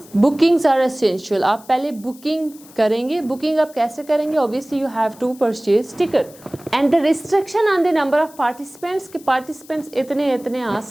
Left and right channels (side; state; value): left; noise; hiss, 23 dB below the sound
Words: bookings are essential, आप पहले बुकिंग करेंगे। बुकिंग आप कैसे करेंगे? Obviously you have to purchase ticket. And the restriction on the number of participants, के पार्टिसिपेंट्स इतने आ